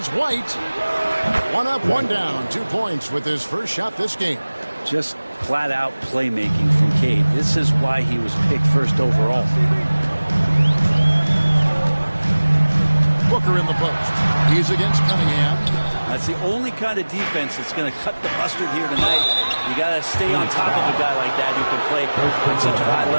White. 1 up, 1 down. 2 points with his first shot this game. Just flat-out playmaking from Cade. This is why he was picked first overall. Booker in the post. He's against Cunningham. That's the only kind of defense that's going to cut the mustard here tonight. You got to stay on top of a guy like that who can play at such a high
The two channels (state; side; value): inverted; both; correlation -1.00